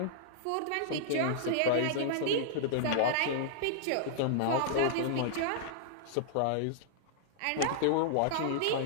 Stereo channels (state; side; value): different; both; correlation -0.01